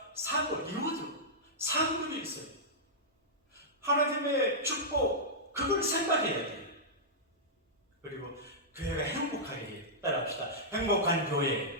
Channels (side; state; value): both; normal; correlation -0.12